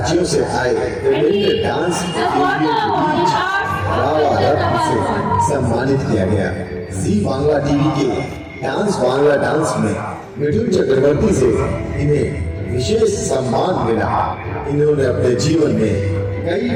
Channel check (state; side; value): identical; both; correlation 1.00